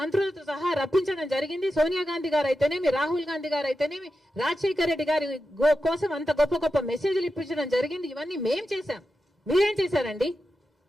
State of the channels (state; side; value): normal; both; correlation 0.90